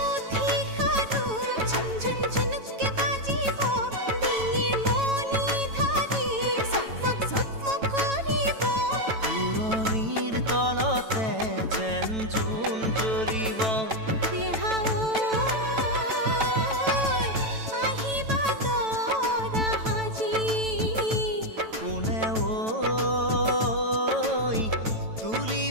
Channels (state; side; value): late; left; 9.1 ms